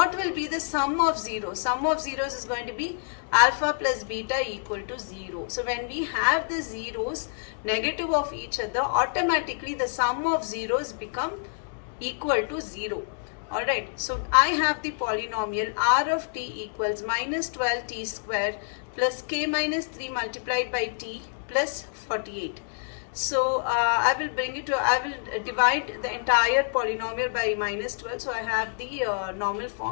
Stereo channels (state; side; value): silent; right; digital silence